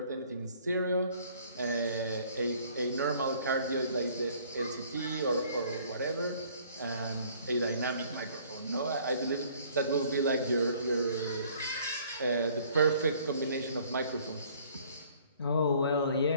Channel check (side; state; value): both; inverted; correlation -0.57